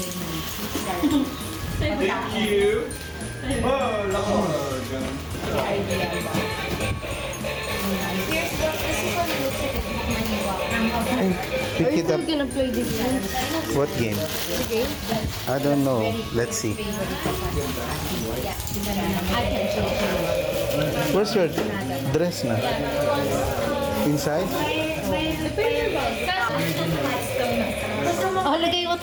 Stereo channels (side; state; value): both; identical; correlation 1.00